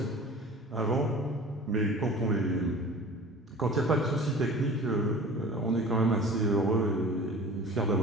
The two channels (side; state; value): both; normal; correlation 0.41